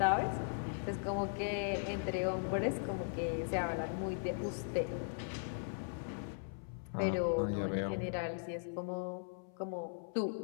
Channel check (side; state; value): right; silent; 52 dB below the other